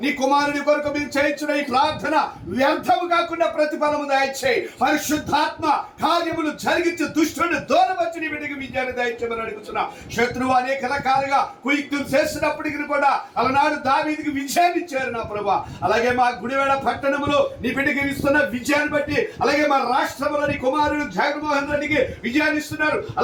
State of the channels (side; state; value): both; identical; correlation 1.00